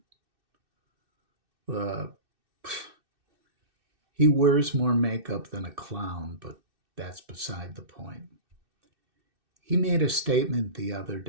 the he wears more makeup than a clown, but that's beside the point. He made a statement the other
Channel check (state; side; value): late; left; 2.6 ms